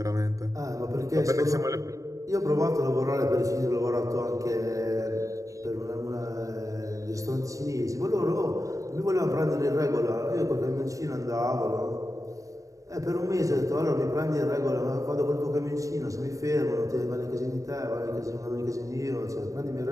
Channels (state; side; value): late; left; 0.16 ms